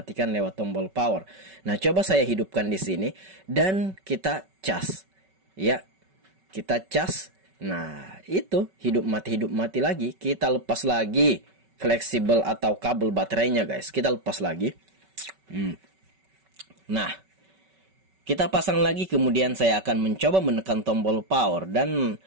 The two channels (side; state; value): left; late; 5.3 ms